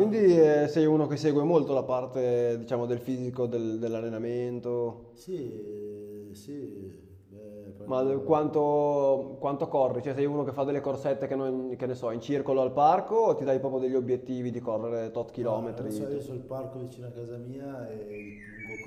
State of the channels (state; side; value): identical; both; correlation 1.00